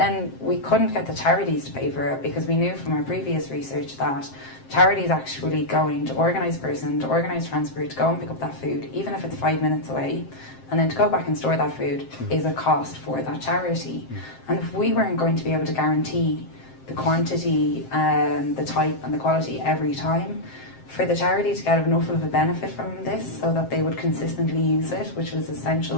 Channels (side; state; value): right; late; 7.6 ms